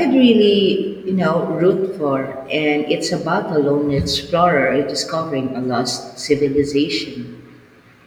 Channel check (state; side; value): identical; both; correlation 1.00